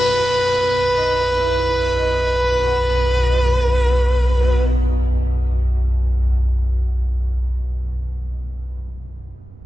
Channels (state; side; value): noise; right; rumble, 21 dB below the sound